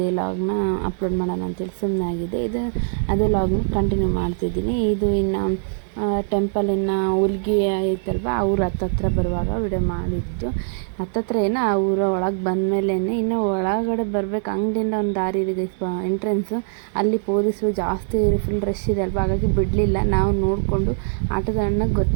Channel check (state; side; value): silent; left; digital silence